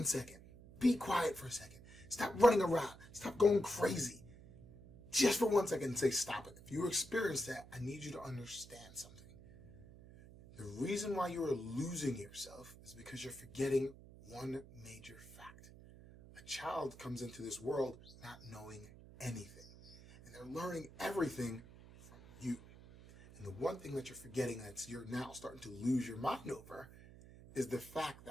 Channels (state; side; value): noise; right; hum, 18 dB below the sound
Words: second. Be quiet for a second. Stop running around. Stop going crazy. Just for 1 second and say stop it. If you experience that, I need you to understand something. The reason why you are losing yourself is because you're forgetting one major fact. A child comes into this world not knowing anything. And they're learning everything from you. And the one thing that you're forgetting that you're now starting to lose your mind over is the fact